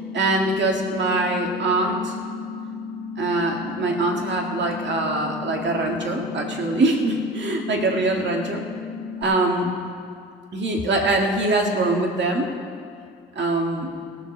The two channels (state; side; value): normal; both; correlation 0.34